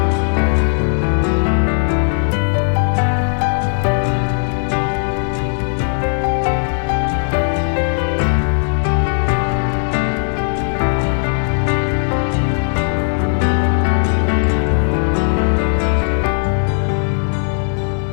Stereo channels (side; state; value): right; silent; 62 dB below the other